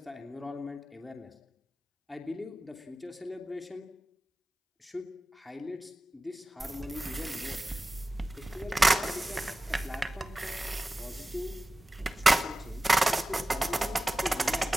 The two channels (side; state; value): both; normal; correlation 0.96